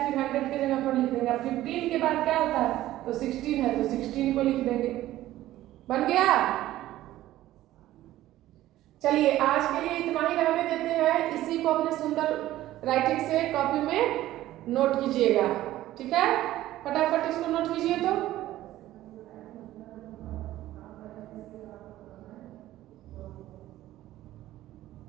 फिर 100 की जगह पर लिख देंगे। अब 15 के बाद क्या होता है, तो 16 है तो 16 को लिख देंगे। बन गया। चलिए आज के लिए इतना ही रहने देते हैं। इसी को अपने सुंदर राइटिंग से कॉपी में नोट कीजिएगा, ठीक है। फटाफट इसको नोट कीजिए। तो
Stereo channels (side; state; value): left; quieter; 14.7 dB